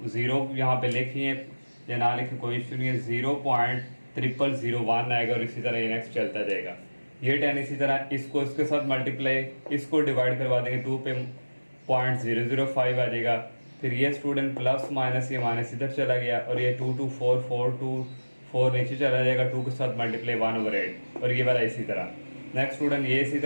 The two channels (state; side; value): inverted; both; correlation -1.00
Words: 0, यहाँ पे लिखिए या ना लिखे कोई इशू नहीं है, 0.001 0001 आएगा और इसी तरह ये नेक्स्ट चलता जाएगा। ये 10 इसी तरह इसको इसके साथ मल्टीप्लाई, इसको डिवाइड करवा देंगे 2 पे 0.005 आ जाएगा। फिर ये स्टूडेंट प्लस माइनस, ये माइनस इधर चला गया और ये 224 नीचे चला जाएगा, 2 के साथ मल्टीप्लाई 1/8 और ये वाला इसी तरह। नेक्स्ट स्टूडेंट ये इसी